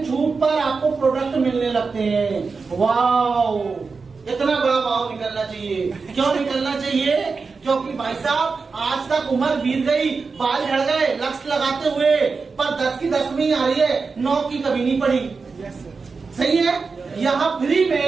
छूट पर आपको प्रोडक्ट मिलने लगते हैं। वाओ, इतना बड़ा भाव निकलना चाहिए। क्यों निकलना चाहिए? क्योंकि भाई साहब आज तक उम्र बीत गई, बाल झड़ गए लक्ष्य लगाते हुए, पर 10 की 10 में ही आ रही है, 9 की कभी नहीं पड़ी। सही है। यहाँ फ्री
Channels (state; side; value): quieter; left; 4.6 dB